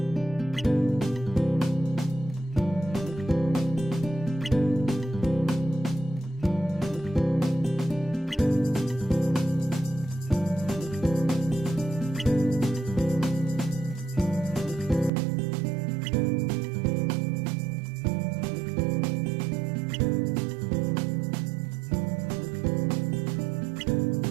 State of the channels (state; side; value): drops out; left; at 15.1 s